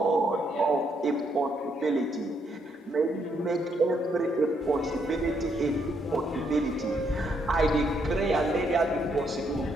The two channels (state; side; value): normal; both; correlation 0.74